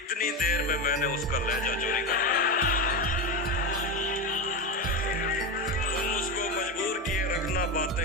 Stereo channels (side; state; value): both; normal; correlation 0.17